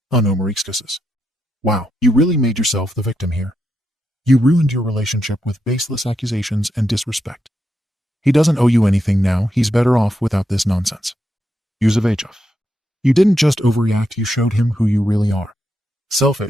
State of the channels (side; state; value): both; normal; correlation 0.83